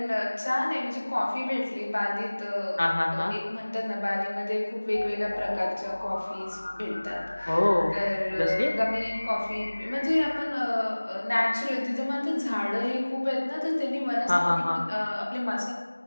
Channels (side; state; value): both; inverted; correlation -1.00